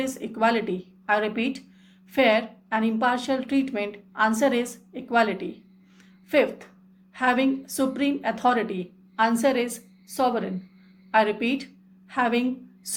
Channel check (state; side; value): identical; both; correlation 1.00